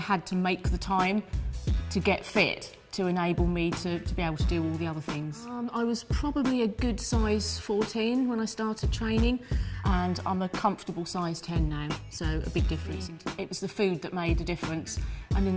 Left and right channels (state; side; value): identical; both; correlation 1.00